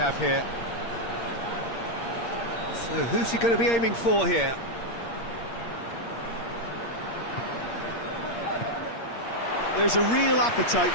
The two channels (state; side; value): late; right; 8.6 ms